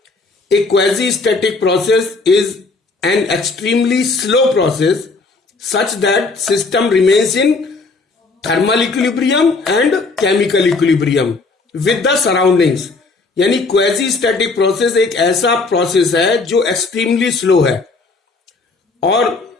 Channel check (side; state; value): right; quieter; 3.8 dB